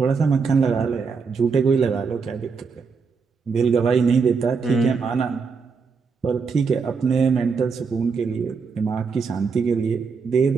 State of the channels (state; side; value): quieter; left; 5.2 dB